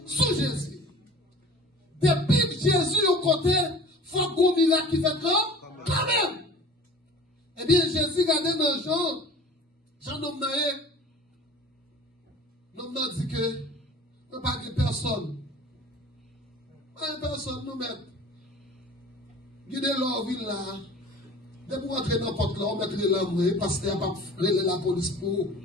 sous Jésus. Depuis que Jésus au côté, faut qu'on miracle qui fait quand même. Eh bien, Jésus regardait dans Jean nomme n'a dit que, nous pas de personne. Pas de personne, nous mettre. Guidez leur ville là. Dès pour entrer dans n'importe là, on mettrait l'homme parce qu'il n'y a pas la police pour.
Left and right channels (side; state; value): both; normal; correlation 0.43